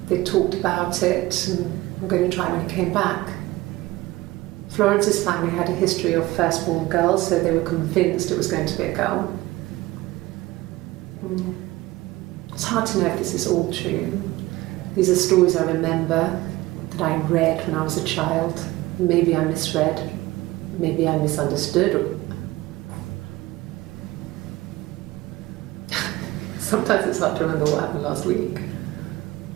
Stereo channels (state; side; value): quieter; left; 18.7 dB